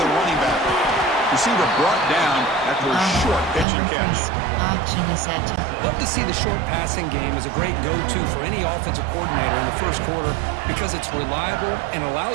running back. Receiver brought down after a short pitch and catch. Option is set. Love to see the short passing game as a great go-to for any offensive coordinator in the first quarter because it's reliable and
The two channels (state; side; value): drops out; left; at 3.7 s